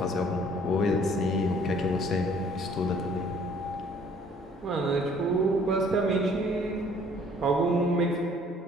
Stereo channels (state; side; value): normal; both; correlation 0.58